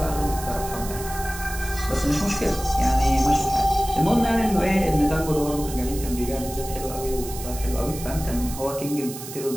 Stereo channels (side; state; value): right; noise; hiss, 11 dB below the sound